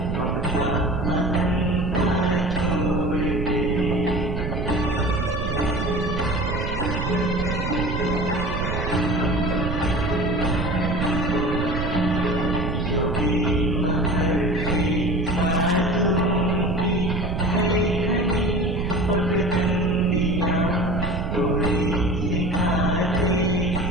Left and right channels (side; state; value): right; noise; rumble, 2 dB below the sound